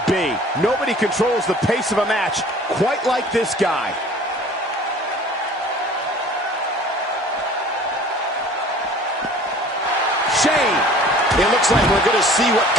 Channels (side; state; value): both; normal; correlation 0.48